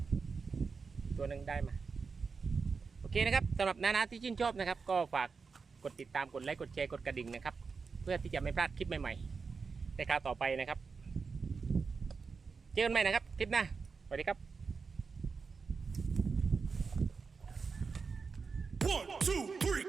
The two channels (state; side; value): quieter; left; 5.0 dB